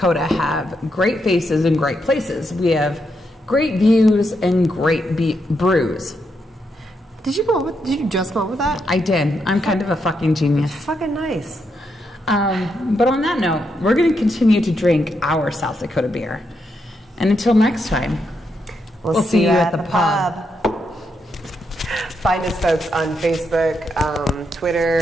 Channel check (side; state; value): both; normal; correlation 0.81